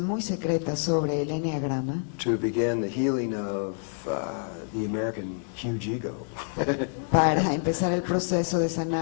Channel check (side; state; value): right; silent; digital silence